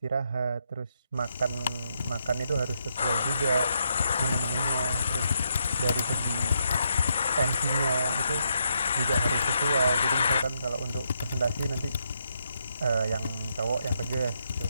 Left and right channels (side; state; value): both; inverted; correlation -0.79